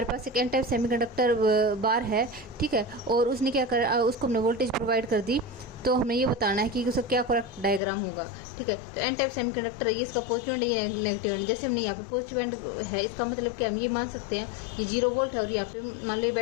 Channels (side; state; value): right; drops out; at 7.8 s